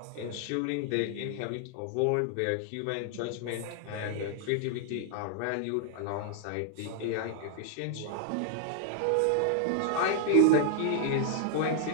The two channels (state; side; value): different; both; correlation 0.00